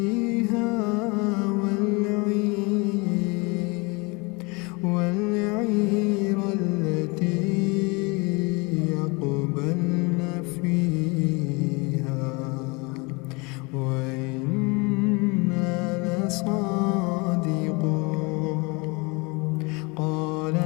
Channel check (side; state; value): right; quieter; 28.1 dB